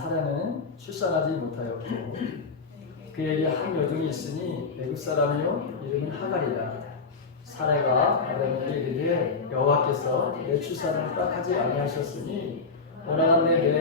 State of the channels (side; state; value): right; quieter; 4.5 dB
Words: 출산하지 못하였고 그에게 한 여종이 있으니 애굽 사람이요 이름은 하갈이라. 사라가 아브라함에게 이르되 여호와께서 내 출산을 허락하지 아니하셨으니 원하건대